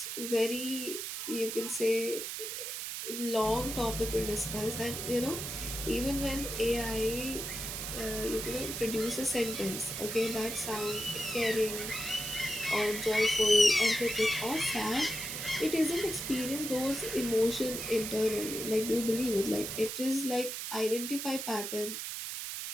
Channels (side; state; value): right; noise; hiss, 5 dB below the sound